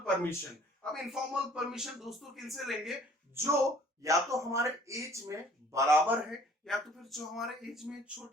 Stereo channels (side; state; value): both; normal; correlation 0.55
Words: परमिशन। अब इनफॉर्मल परमिशन दोस्तों किनसे लेंगे, जो या तो हमारे एज में बराबर है या तो फिर जो हमारे एज में